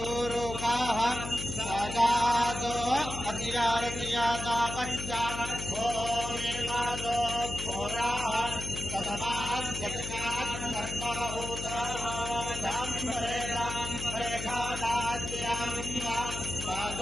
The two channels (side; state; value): left; noise; hum, 7 dB below the sound